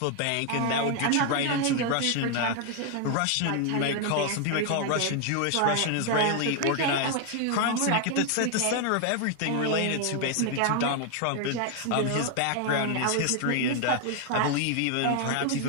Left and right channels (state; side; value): different; both; correlation 0.00